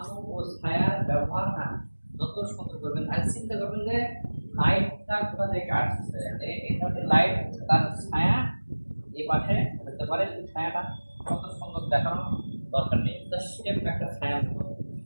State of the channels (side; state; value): both; inverted; correlation -1.00